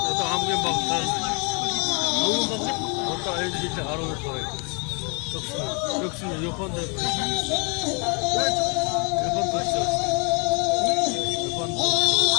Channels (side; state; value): right; quieter; 33.8 dB